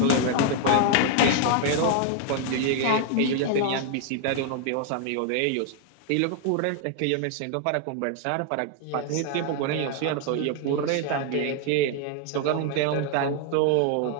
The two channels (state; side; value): different; both; correlation 0.00